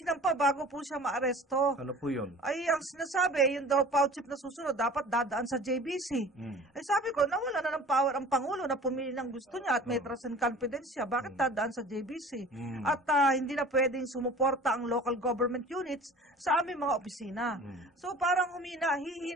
bago po siya maaresto. Ano po yun? Ay ang sinasabi, yung daw PAO chief na susunod, dapat dadaan sa JBC. Ay sabi ko, nawala na ng power ang Pangulo na pumili ng gusto niya at may trust and confidence siya. Bakit dadaan sa JBC? At hindi na pwedeng sumuporta ang local government units sa aming mga opisina. So parang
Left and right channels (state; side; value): normal; both; correlation 0.43